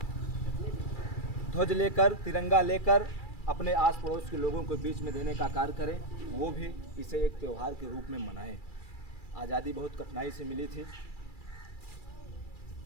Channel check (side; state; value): right; late; 2.3 ms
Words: ध्वज लेकर, तिरंगा लेकर अपने आस पड़ोस के लोगों के बीच में देने का कार्य करें, वो भी इसे एक त्यौहार के रूप में मनाएं। आज़ादी बहुत कठिनाई से मिली थी।